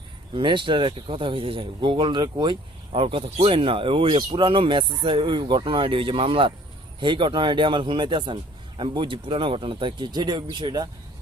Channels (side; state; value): both; normal; correlation 0.54